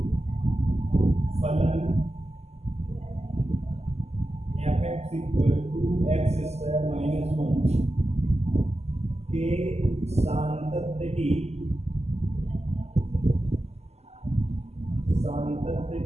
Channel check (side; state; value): left; late; 0.31 ms